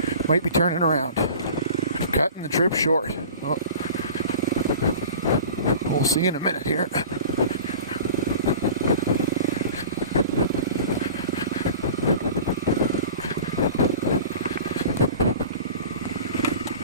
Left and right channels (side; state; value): both; inverted; correlation -0.39